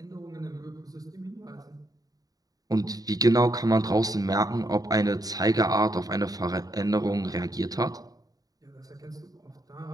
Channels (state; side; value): late; left; 0.18 ms